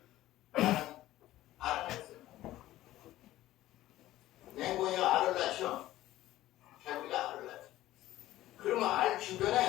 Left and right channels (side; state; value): right; quieter; 15.2 dB